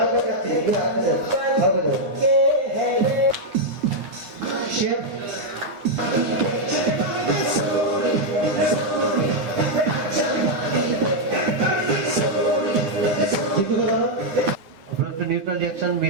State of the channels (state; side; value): late; left; 10 ms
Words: দেখাচ্ছি, আরো দেখাচ্ছি। শেফ একটু নিউট্রাল রিঅ্যাকশন